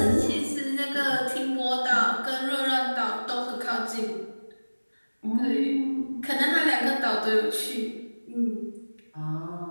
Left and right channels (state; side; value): inverted; both; correlation -1.00